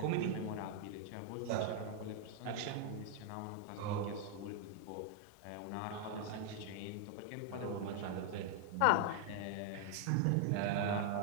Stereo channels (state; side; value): different; both; correlation 0.00